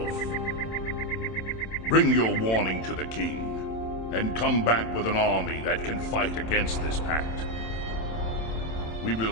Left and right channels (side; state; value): right; late; 27 ms